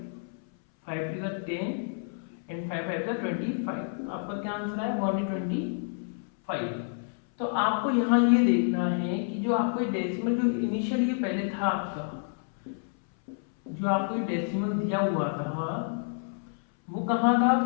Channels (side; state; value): right; silent; 59 dB below the other